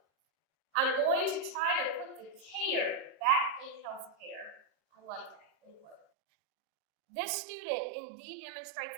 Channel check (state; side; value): drops out; left; at 6.0 s